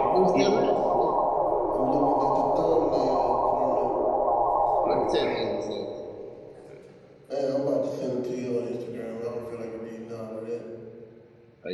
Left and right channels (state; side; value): identical; both; correlation 1.00